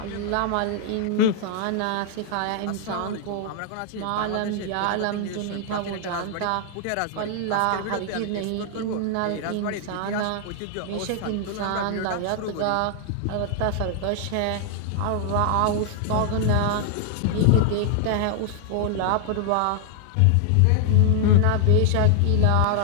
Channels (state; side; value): different; both; correlation 0.00